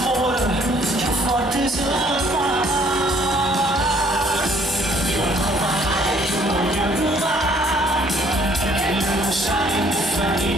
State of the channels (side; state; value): both; normal; correlation 0.61